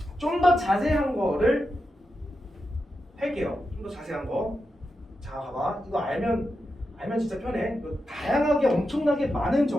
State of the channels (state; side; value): normal; both; correlation 0.88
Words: 좀 더 자세한 거를 할게요. 좀 더 자세한 거. 자, 봐봐. 이거 알면 진짜 편해. 다양하게 엄청나게 많은